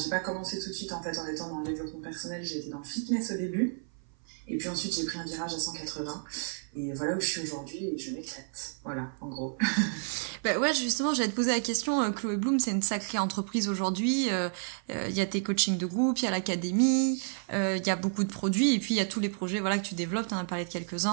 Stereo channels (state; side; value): silent; left; 55 dB below the other